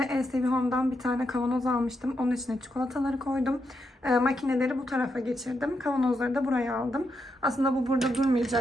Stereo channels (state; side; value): normal; both; correlation 0.82